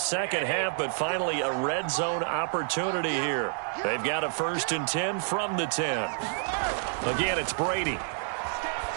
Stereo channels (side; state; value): left; silent; 59 dB below the other